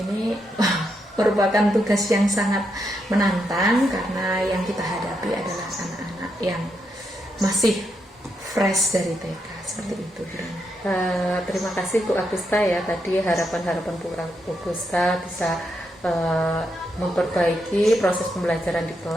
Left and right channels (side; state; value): both; normal; correlation 0.81